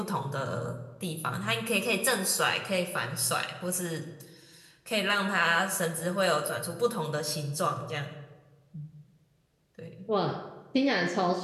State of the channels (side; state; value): both; identical; correlation 1.00